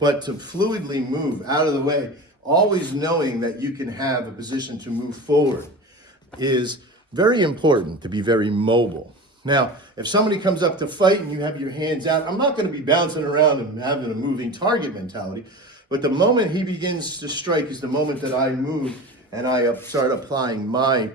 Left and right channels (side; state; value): both; normal; correlation 0.32